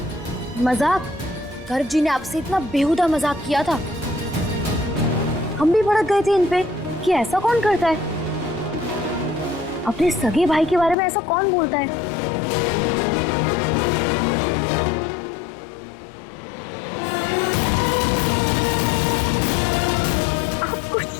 मजाक। गर्ग जी ने आपसे इतना बेहुदा मजाक किया था, हम भी भड़क गए थे इन पे कि ऐसा कौन करता है। अपने सगे भाई के बारे में ऐसा कौन बोलता है? आपको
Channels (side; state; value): right; drops out; at 11.0 s